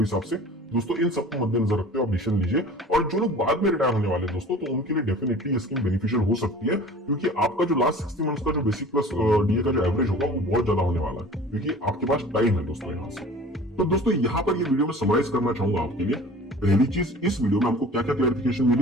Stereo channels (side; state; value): both; normal; correlation 0.43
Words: से। दोस्तों इन सबको मद्देनजर रखते हुए आप डिसीजन लीजिए। और जो लोग बाद में रिटायर होने वाले दोस्तों, तो उनके लिए डेफिनेटली ये स्कीम बेनिफिशियल हो सकती है, क्योंकि आपका जो लास्ट 60 मंथ्स का जो बेसिक प्लस डीए का जो एवरेज होगा वो बहुत ज्यादा होने वाला है, क्योंकि आपके पास टाइम है दोस्तों यहाँ से। तो दोस्तों यहाँ पर ये वीडियो में समराइज करना चाहूंगा आपके लिए। पहली चीज, इस वीडियो में हमको क्या क्या क्लैरिफिकेशन